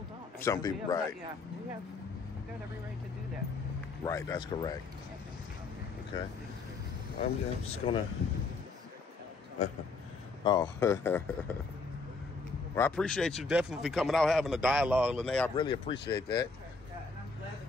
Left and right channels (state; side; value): quieter; right; 4.1 dB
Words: don't. Some people, right. Yeah, we've got every right to do that. Right, that's correct. Okay. I'm just gonna. Well, I appreciate you definitely coming out having a dialogue, Lene. I really appreciate that. And I'm glad